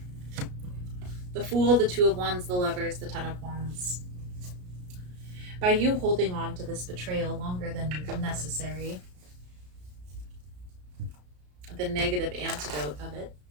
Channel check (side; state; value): left; late; 33 ms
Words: The Fool, the Two of Wands, the Lovers, the Ten of Wands. By you holding on to this betrayal longer than necessary, the negative antidote of it,